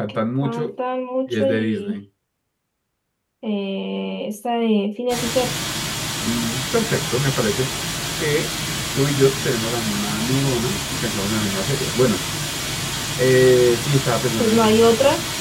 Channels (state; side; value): identical; both; correlation 1.00